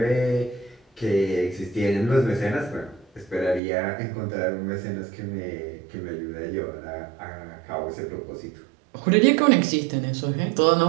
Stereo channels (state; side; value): drops out; left; at 3.6 s